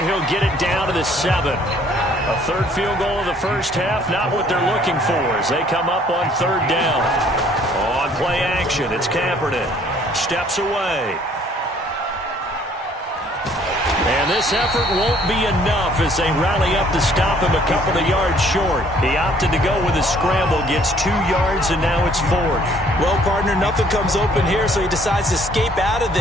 he'll get it down to the 7. A 3rd field goal of the first half, not what they're looking for as they come up on 3rd down. On play action, it's Kaepernick. Steps away. And this effort won't be enough as they rally up to stop him a couple of yards short. He opted to go with a scramble, gets 2 yards, and now it's 4th. Well, partner, nothing comes open here, so he decides to escape out of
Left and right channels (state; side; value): normal; both; correlation 0.60